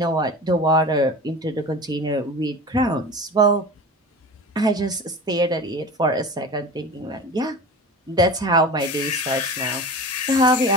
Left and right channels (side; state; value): both; normal; correlation 0.33